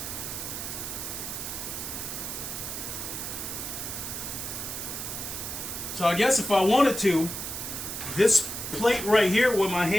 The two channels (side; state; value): right; noise; hiss, 5 dB below the sound